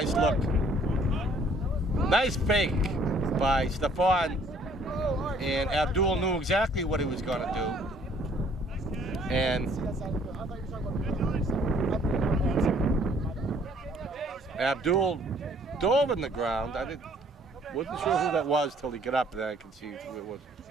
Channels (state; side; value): normal; both; correlation 0.60